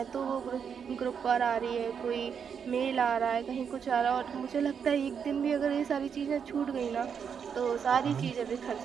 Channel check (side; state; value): left; quieter; 7.1 dB